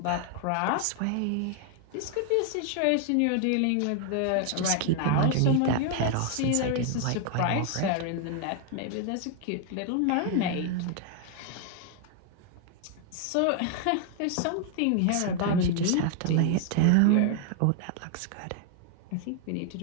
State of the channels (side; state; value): both; different; correlation 0.00